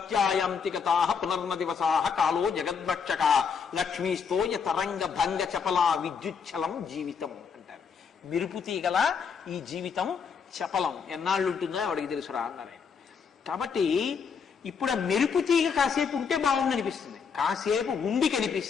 పునర్న దివసా కాలో జగద్భక్షక లక్ష్మీస్తోయ తరంగ భంగ చపలా విద్యుచ్చలం జీవితం అంటారు. మెరుపు తీగల ఈ జీవితం చపలం, ఎన్నాళ్ళు ఉంటుందో వాడికి తెలుసురా అన్నారు. కాబట్టి ఇప్పుడు ఆ మెరుపు తీగ కాసేపు ఉంటే బాగుంది అనిపిస్తుంది, కాసేపు ఉండి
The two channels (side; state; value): right; quieter; 6.2 dB